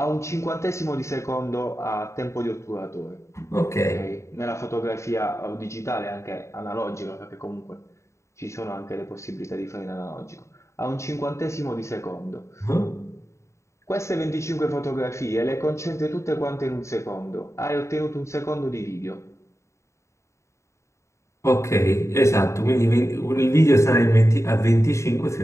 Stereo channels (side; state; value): right; late; 0.14 ms